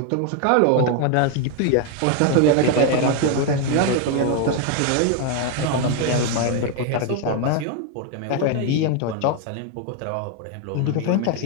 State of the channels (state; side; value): different; both; correlation 0.01